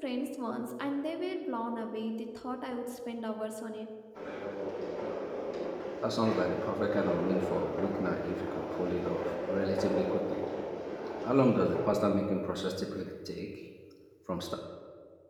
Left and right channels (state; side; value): identical; both; correlation 1.00